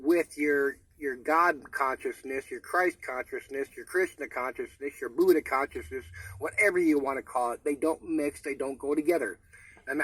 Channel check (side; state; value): both; identical; correlation 1.00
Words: with your your God consciousness, your Christ consciousness, your Krishna consciousness, your Buddha consciousness, whatever you want to call it. They don't mix. They don't go together. And